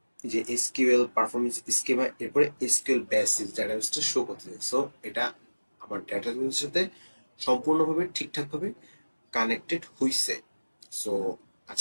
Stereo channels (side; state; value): both; inverted; correlation -1.00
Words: যে এসকিউএল পারফরমেন্স স্কিমা, এরপরে এসকিউএল বেসিস ডেটাবেসটা শো করতেছে। সো এটা আমার ডেটাবেসের সাথে সম্পূর্ণভাবে ঠিকঠাকভাবে কানেক্টেড হইছে। সো